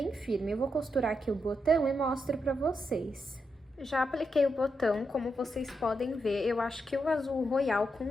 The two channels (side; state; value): both; normal; correlation 0.84